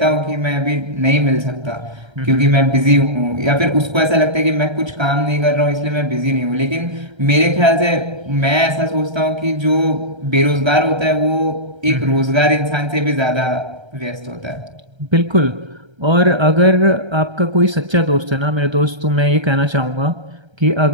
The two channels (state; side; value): late; left; 1.3 ms